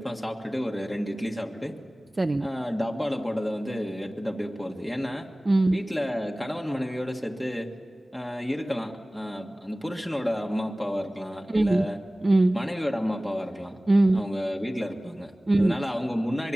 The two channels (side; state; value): both; normal; correlation 0.98